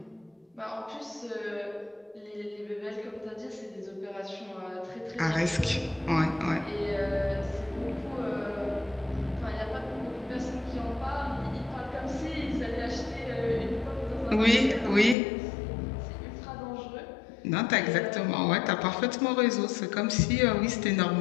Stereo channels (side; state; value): right; drops out; at 15.2 s